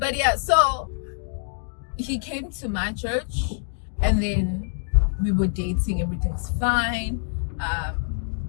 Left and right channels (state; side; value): silent; right; digital silence